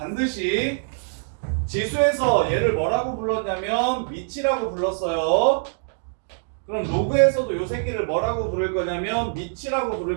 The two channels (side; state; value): left; silent; digital silence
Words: 지수에서 얘를 뭐라고 불렀냐면 미치라고 불렀어요. 그럼 로그에서도 요 새끼를 뭐라고 부를 거냐면 미치라고